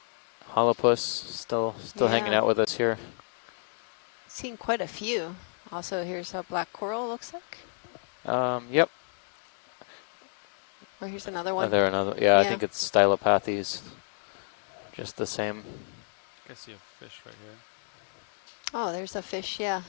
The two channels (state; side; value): silent; right; 58 dB below the other